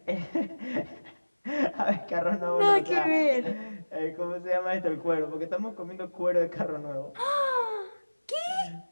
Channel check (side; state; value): both; inverted; correlation -1.00